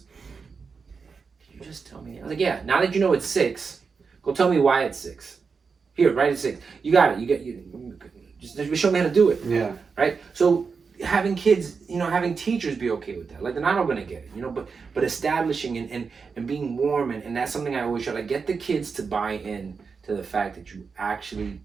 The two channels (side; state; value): left; quieter; 5.2 dB